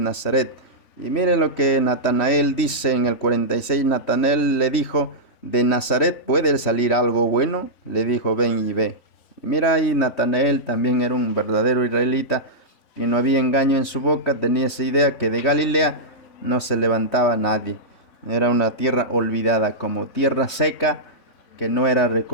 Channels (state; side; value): late; right; 3.1 ms